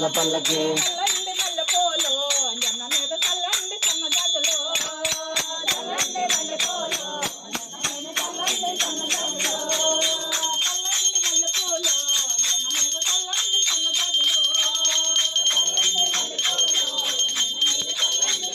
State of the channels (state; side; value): identical; both; correlation 1.00